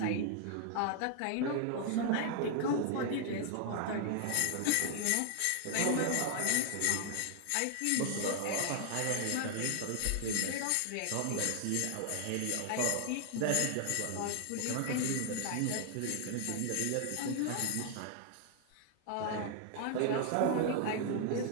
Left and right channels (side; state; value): both; different; correlation 0.00